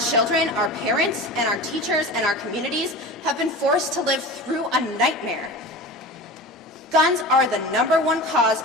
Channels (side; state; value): both; normal; correlation 0.32